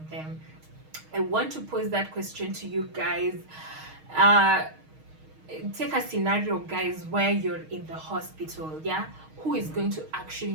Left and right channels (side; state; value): left; late; 6.4 ms